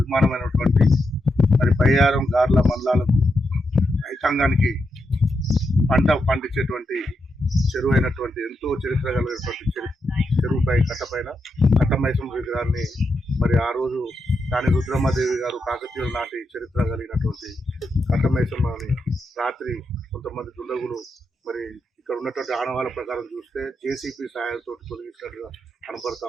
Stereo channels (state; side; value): normal; both; correlation 0.84